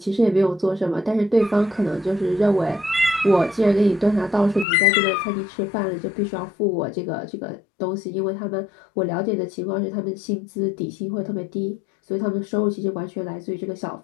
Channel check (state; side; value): drops out; right; at 4.7 s